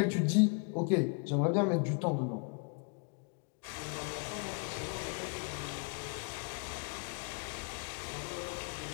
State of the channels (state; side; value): quieter; right; 37.0 dB